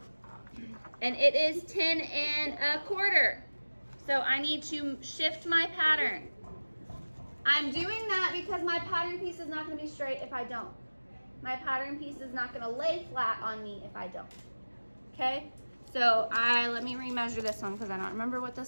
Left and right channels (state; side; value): inverted; both; correlation -1.00